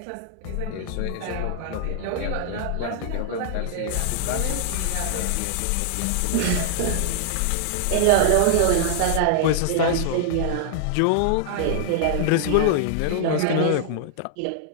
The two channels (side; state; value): both; different; correlation -0.01